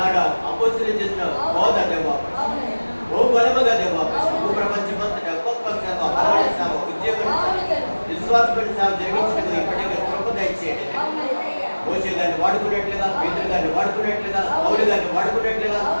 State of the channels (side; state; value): both; inverted; correlation -1.00